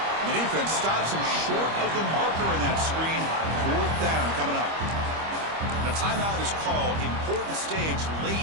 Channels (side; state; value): left; late; 25 ms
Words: The defense stops him short of the marker in that screen. Fourth down coming up. A timeout is called. Important stage